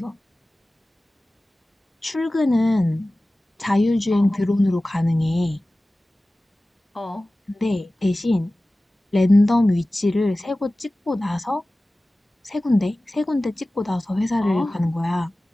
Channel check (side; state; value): both; normal; correlation 0.97